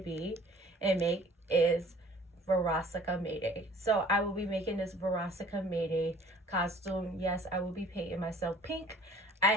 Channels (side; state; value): both; normal; correlation 0.51